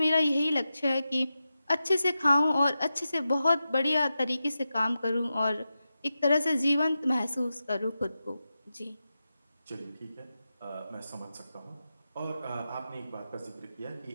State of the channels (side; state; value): both; inverted; correlation -0.91